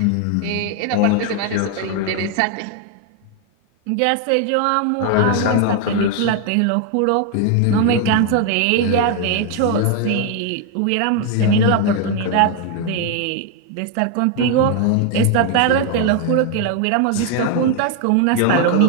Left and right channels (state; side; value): different; both; correlation 0.01